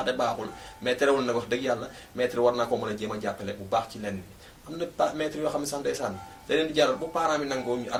baaxul mais terewul nag wax dëgg yàlla maître war naa ko mën a jéem a jàppale bu baax ci lenn am na maître yoo xam ne sax ndeysaan da leen di jaral bu parents bi nangoo ñu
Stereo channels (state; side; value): identical; both; correlation 1.00